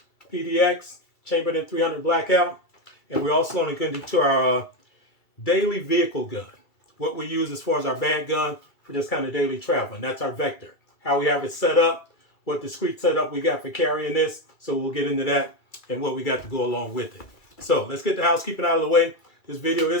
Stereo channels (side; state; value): right; late; 2.3 ms